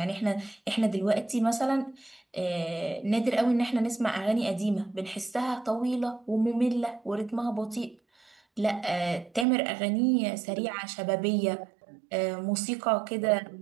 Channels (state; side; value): drops out; left; at 9.5 s